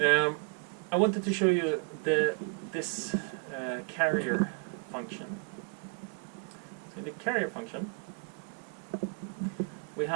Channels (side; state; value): left; quieter; 36.7 dB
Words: I wanted to show you this carrier function. So in the carrier function, we